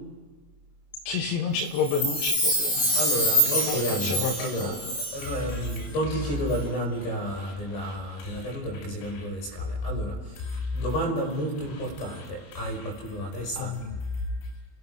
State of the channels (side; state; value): right; late; 25 ms